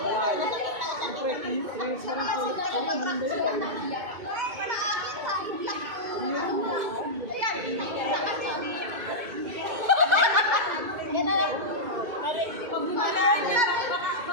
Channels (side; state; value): left; late; 2.2 ms